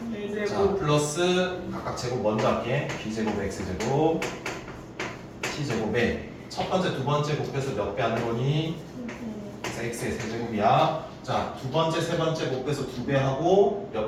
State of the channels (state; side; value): identical; both; correlation 1.00